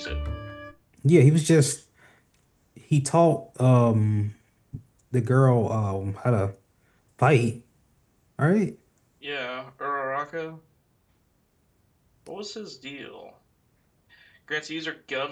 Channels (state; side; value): identical; both; correlation 1.00